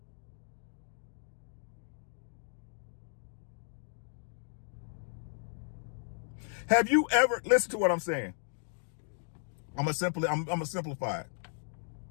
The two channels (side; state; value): right; silent; digital silence